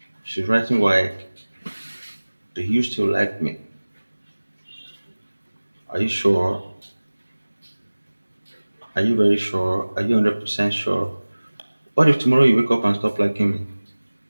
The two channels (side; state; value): both; inverted; correlation -1.00